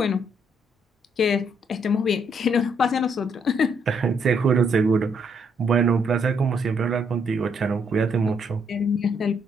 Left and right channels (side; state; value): both; normal; correlation 0.72